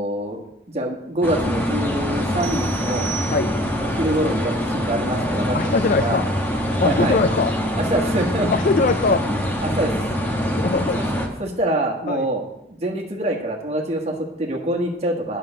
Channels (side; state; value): both; normal; correlation 0.45